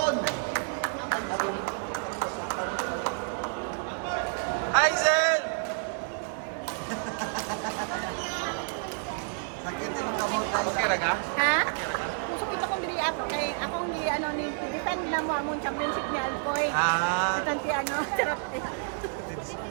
Hazel! Sakit yung kamot tayo. Okay ra ka? Ha? Okay ra ka? Pusok ito kong diri ako kay akong gi ano ni defend na mo among championship ni Alcoy. Ah, Tanti ano, charot eh.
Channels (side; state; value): left; silent; 58 dB below the other